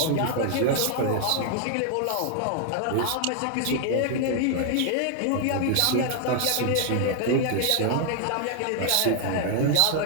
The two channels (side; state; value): both; different; correlation 0.00